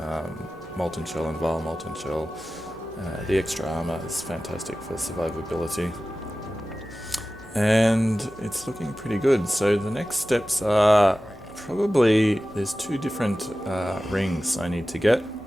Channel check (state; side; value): normal; both; correlation 0.95